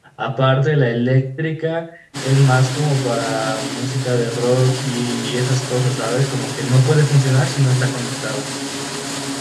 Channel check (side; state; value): both; identical; correlation 1.00